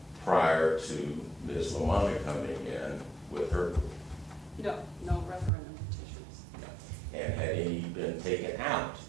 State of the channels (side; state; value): left; drops out; at 5.5 s